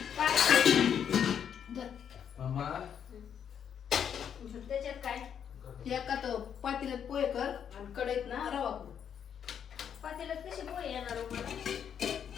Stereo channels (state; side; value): quieter; right; 8.3 dB